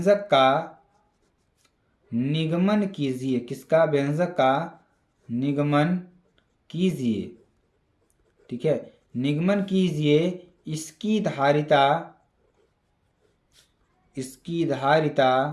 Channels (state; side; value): identical; both; correlation 1.00